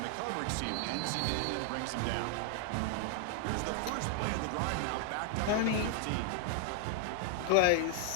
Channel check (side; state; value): both; different; correlation 0.00